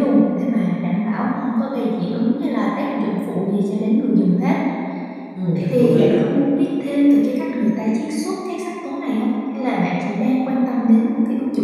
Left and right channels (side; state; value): both; identical; correlation 1.00